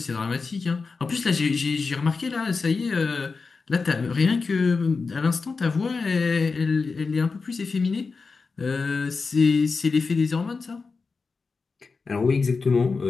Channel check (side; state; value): right; quieter; 4.5 dB